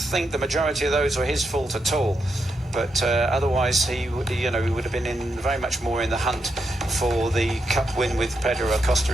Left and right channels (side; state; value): both; normal; correlation 0.83